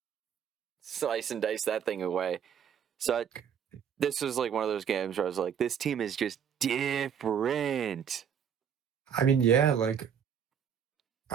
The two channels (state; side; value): quieter; left; 8.0 dB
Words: slice and dice that thing away. So this was like one of those games where I was like, this team is just different. I mean, yeah, like,